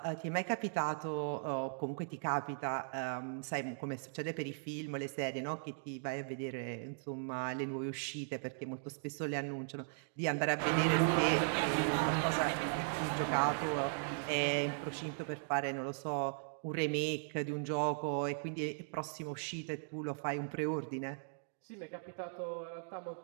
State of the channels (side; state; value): left; silent; digital silence